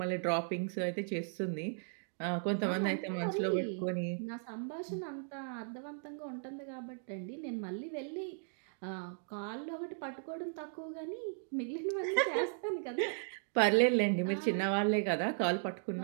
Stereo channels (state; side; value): silent; left; digital silence